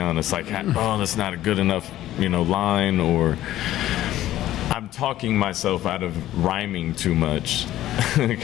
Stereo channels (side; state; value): right; quieter; 13.9 dB